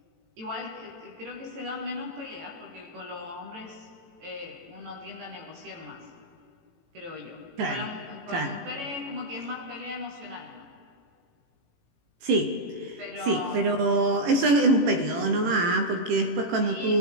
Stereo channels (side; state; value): left; late; 18 ms